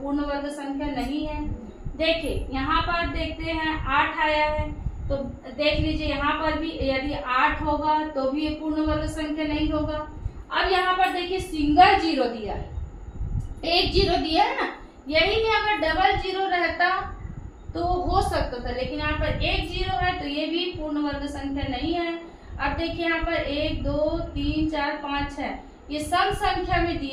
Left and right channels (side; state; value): both; identical; correlation 1.00